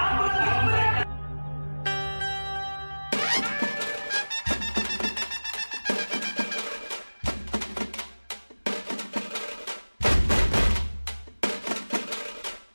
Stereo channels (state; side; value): inverted; both; correlation -1.00